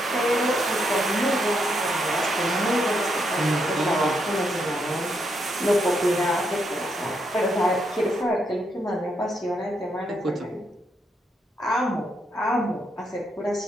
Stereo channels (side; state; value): both; normal; correlation 0.78